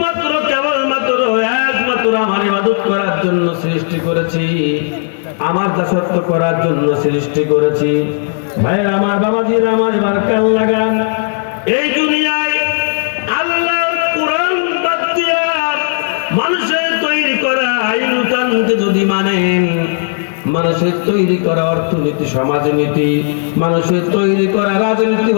কেবলমাত্র একমাত্র আমার ইবাদত করার জন্য সৃষ্টি করেছি, আমার দাসত্ব করার জন্য সৃষ্টি করেছি। ভাইয়ের আমার, বাবাজির আমার, এবার কাল লাগান। এই দুনিয়ায় আল্লাহর কোরআন বাদ দিয়া মানুষের তৈরি করা আইন-কানুনকে যদি মানেন, মানুষের তৈরি করা অর্থনীতি, সমাজনীতি, মানুষের তৈরি করা রাজনীতি,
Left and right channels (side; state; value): right; silent; digital silence